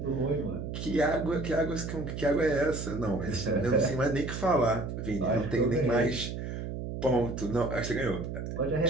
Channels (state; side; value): noise; right; hum, 6 dB below the sound